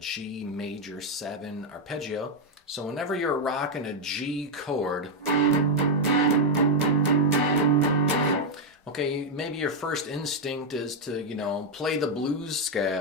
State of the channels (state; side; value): normal; both; correlation 0.00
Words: major 7 arpeggio. So whenever you're rocking a G chord, okay, maybe your first instinct is to, play the blues